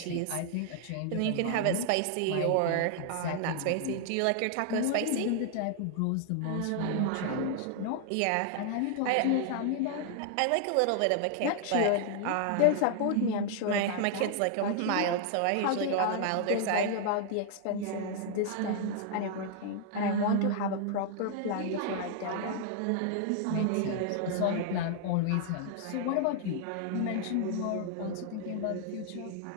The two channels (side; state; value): both; different; correlation 0.00